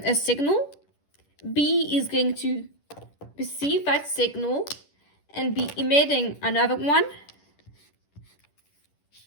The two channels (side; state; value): right; late; 10 ms